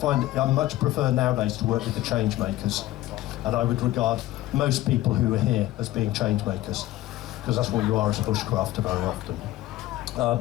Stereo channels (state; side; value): quieter; right; 15.7 dB